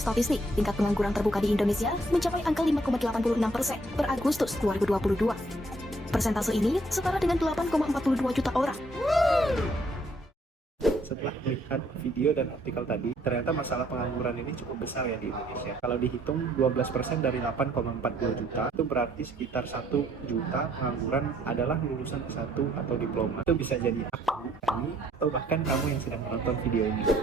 tingkat pengangguran terbuka di Indonesia mencapai angka 5,86% per Agustus 2022. Persentase ini setara dengan 8,42 juta orang. Setelah melihat video dan artikel tadi, ternyata masalah pengangguran ini cukup besar ya di Indonesia. Kalau dihitung 12% dari 8,40 juta, itu berarti sekitar 1 juta pengangguran adalah lulusan S1 atau diploma. Itu bisa jadi aku, kami, atau bahkan kamu yang sedang menonton video ini.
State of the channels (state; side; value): normal; both; correlation 0.66